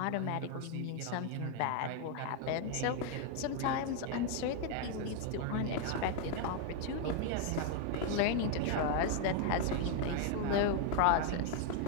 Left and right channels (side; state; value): both; different; correlation 0.00